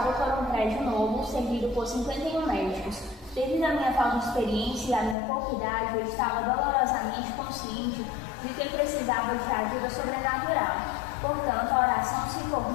por um prédio novo, servido por 51 médicos. Devido à minha falta de experiência e à minha pouca idade, eu estava dolorosamente consciente de que precisava de ajuda sobrenatural. Portanto, a oração se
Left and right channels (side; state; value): right; drops out; at 5.2 s